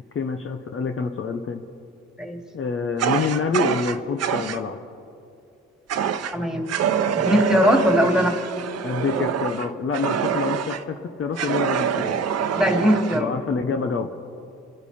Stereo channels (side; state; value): both; normal; correlation 0.43